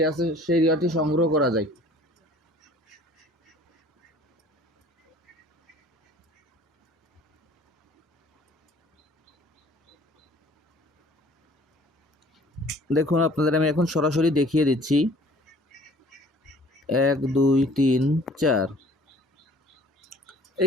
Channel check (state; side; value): normal; both; correlation 0.53